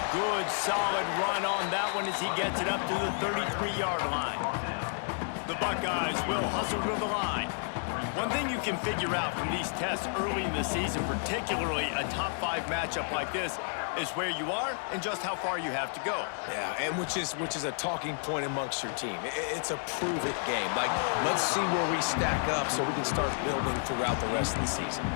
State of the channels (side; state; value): right; silent; 57 dB below the other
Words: Good, solid run on that one as he gets it up to the 33-yard line. The Buckeyes will hustle to the line. One thing you can figure out from these tests early in the season, particularly a top 5 matchup like this, is where you are and just how far you have to go. Yeah, and which is a talking point amongst your team. It's a prove-it game. Like, let's see where we stack up so we can start building throughout the rest of the season.